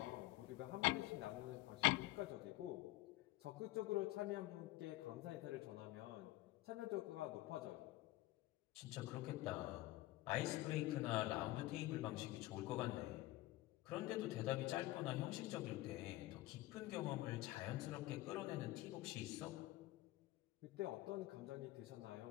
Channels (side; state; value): right; quieter; 17.8 dB